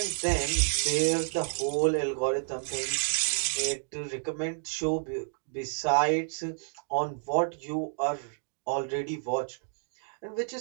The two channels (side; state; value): left; silent; digital silence